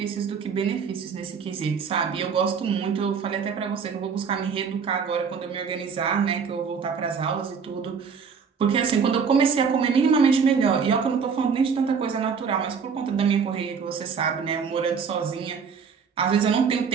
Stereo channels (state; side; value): quieter; left; 6.1 dB